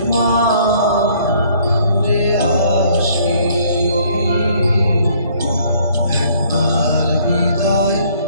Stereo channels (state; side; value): inverted; both; correlation -0.61